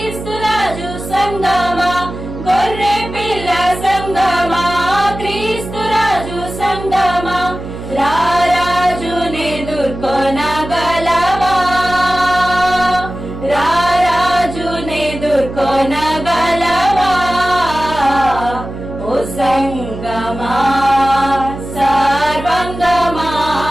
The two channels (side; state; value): right; noise; hum, 10 dB below the sound